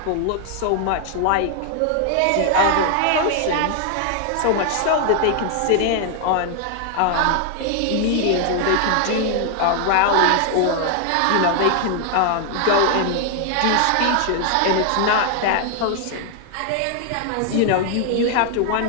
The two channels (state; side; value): different; both; correlation 0.00